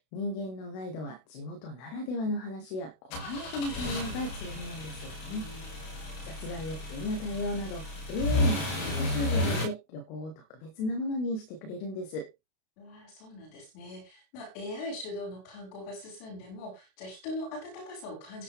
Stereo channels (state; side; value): late; right; 32 ms